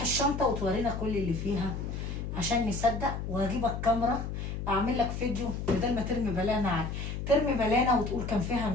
الشنطه وتورينا كل اللي فيها، عشان نصدق، وهجيب الكاميرا اعمل لك فيديو بدل ما ترمي بلانه على ترمي بلانه وتقول كان فيها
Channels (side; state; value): left; noise; hum, 5 dB below the sound